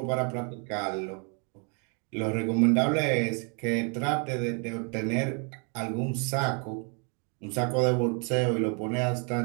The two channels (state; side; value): quieter; left; 37.3 dB